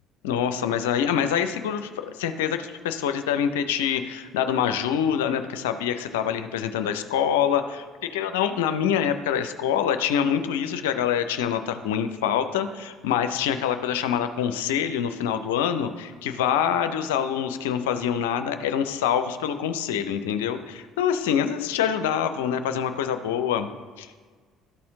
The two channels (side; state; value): right; quieter; 8.4 dB